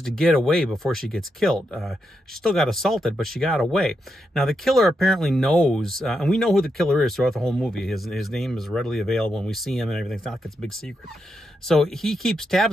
to get away before she gets killed. She still got assaulted, but she got away. Now, the killer apparently knows, and we know who the killer is throughout the whole movie. His name is readily available, and we see him and everything. It's not like it's a big secret. So he keeps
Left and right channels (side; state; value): both; normal; correlation 0.83